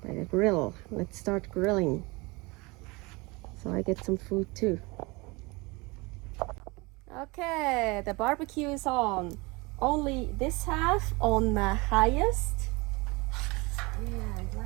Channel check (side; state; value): left; quieter; 25.3 dB